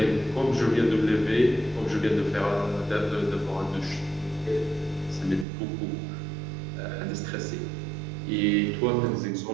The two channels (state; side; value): drops out; left; at 5.5 s